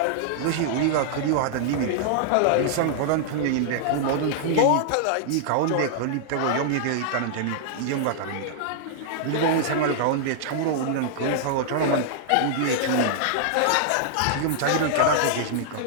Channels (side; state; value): both; different; correlation -0.01